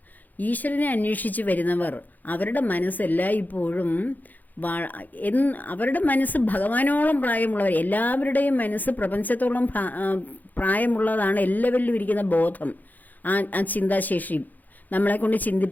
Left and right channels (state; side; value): late; right; 0.083 ms